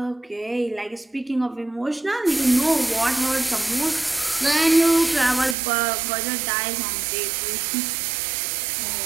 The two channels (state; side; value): drops out; left; at 5.6 s